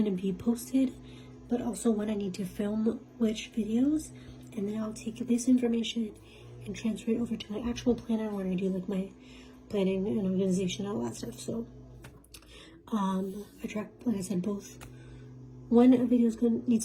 to be posted, but also when I need to film which videos. And then I'll take this information and transfer it over to my actual planner where I do like my planning and organization, all that stuff. So I track, like I said, both when a video needs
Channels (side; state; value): both; identical; correlation 1.00